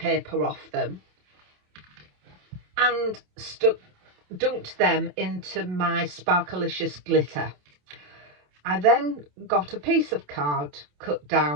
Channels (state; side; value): late; left; 27 ms